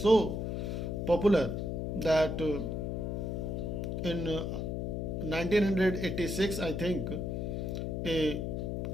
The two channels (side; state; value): left; noise; hum, 2 dB below the sound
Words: popular that in 1986 I think a